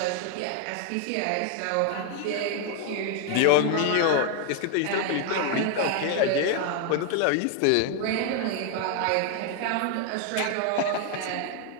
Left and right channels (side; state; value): both; different; correlation 0.00